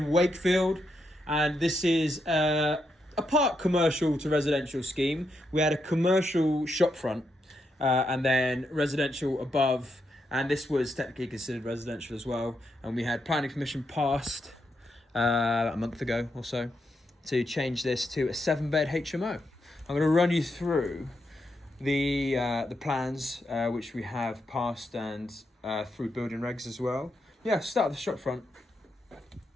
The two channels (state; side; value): normal; both; correlation 0.82